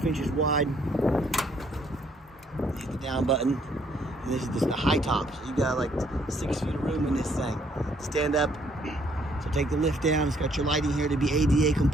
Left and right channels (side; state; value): both; normal; correlation 0.66